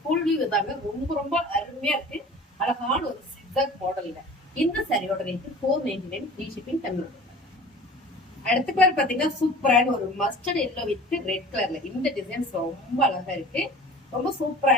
ஃபுல் வியூ இதாங்க. ரொம்ப ரொம்ப அருமையா இருக்கு. அழகான ஒரு சிக்ஸாக் மாடல்ல இந்த சாரியோட ரேட்டு 499 ஃப்ரீ ஷிப்பிங் தமிழ்நாடு. அடுத்த கலர் பாத்தீங்கன்னா சூப்பரான ஒரு மஸ்டர்ட் எல்லோ வித் ரெட் கலர்ல இந்த டிசைன்ஸ் ரொம்ப அழகா இருக்கு. ரொம்ப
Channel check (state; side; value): normal; both; correlation 0.42